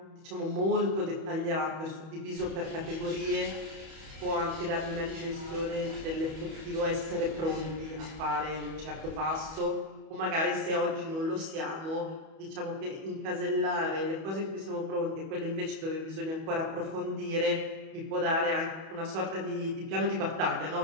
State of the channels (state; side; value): late; left; 31 ms